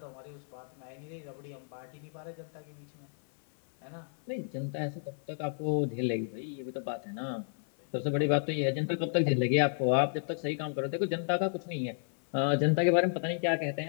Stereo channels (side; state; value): right; silent; 56 dB below the other